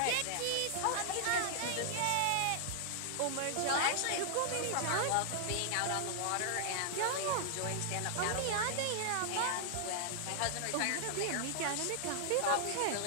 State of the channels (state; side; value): different; both; correlation -0.01